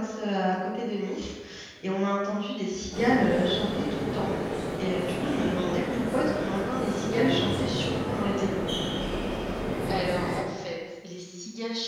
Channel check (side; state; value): both; identical; correlation 1.00